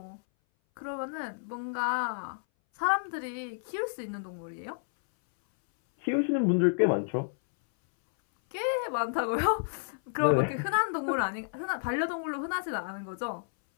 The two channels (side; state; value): right; silent; 57 dB below the other